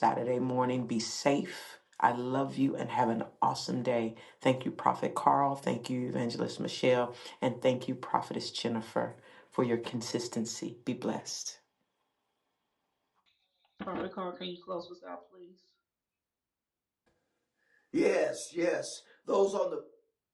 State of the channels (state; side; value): identical; both; correlation 1.00